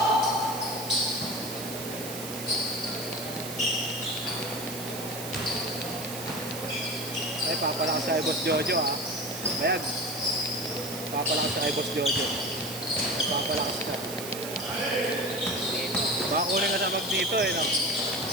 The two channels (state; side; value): noise; right; hiss, 9 dB below the sound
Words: Ay, papalakas sa Boss Jojo ha. Bayag. Papalakas sa Boss Jojo. Papalakas ka. Baka kunin ka sa mag dito eh. No?